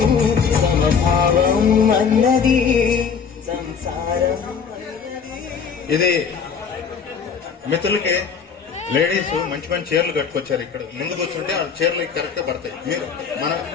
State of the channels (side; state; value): right; quieter; 6.4 dB